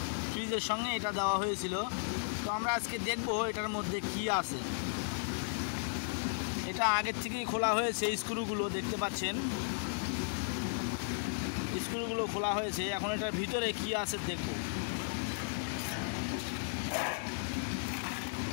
ফ্রিজের সঙ্গে এটা দেওয়া হয়েছিল। তো আমরা আজকে দেখব এটার মধ্যে কি আছে। এটা আগের থেকেই খোলা হয়েছে, স্ক্রুগুলো দেখতে পাচ্ছেন, স্ক্রুগুলো খোলা হয়েছে। এখন এটার ভিতরে কি আছে দেখব।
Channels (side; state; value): right; silent; digital silence